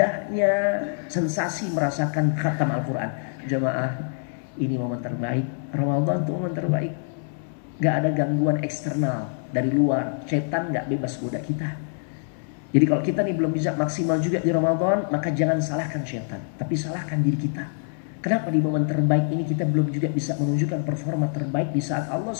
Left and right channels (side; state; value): right; silent; digital silence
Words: sensasi merasakan khatam Al-Quran. Jamaah, ini momen terbaik. Ramadan itu momen terbaik. Gak ada gangguan eksternal dari luar. Setan gak bebas goda kita. Jadi kalau kita nih belum bisa maksimal juga di Ramadan, maka jangan salahkan setan, tapi salahkan diri kita. Kenapa di momen terbaik ini kita belum juga bisa menunjukkan performa terbaik di saat Allah